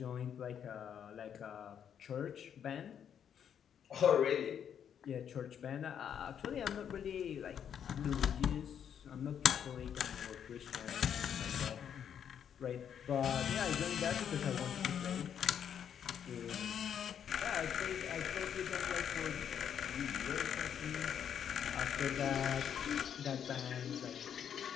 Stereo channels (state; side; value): quieter; right; 8.6 dB